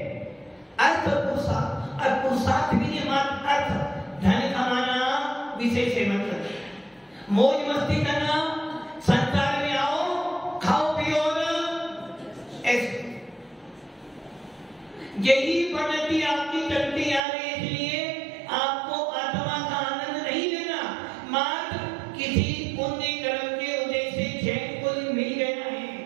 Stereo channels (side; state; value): left; drops out; at 17.2 s